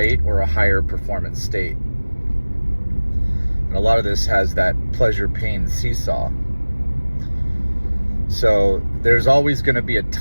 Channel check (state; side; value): inverted; both; correlation -1.00